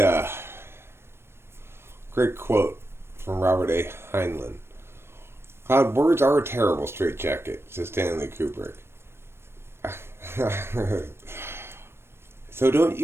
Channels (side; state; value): left; late; 0.12 ms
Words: great quote from Robert A. Heinlein. Cloud, words are a terrible straitjacket, says Stanley Kubrick. So don't